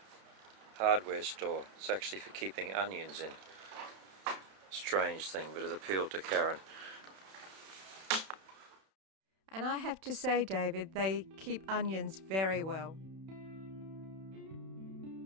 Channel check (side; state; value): left; late; 31 ms